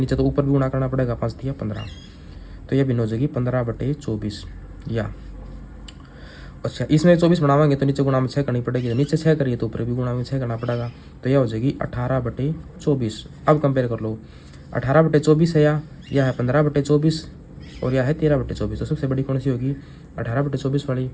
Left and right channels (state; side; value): identical; both; correlation 1.00